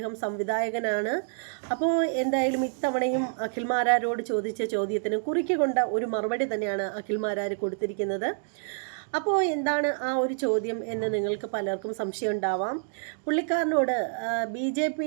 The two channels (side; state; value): left; silent; digital silence